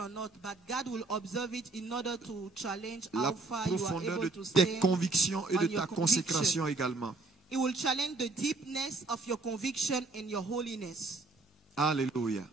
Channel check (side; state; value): left; quieter; 3.5 dB